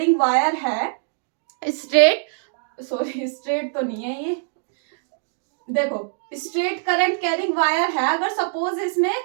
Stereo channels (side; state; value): left; silent; digital silence